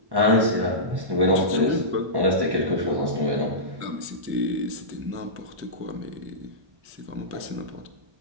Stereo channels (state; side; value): late; left; 1.1 ms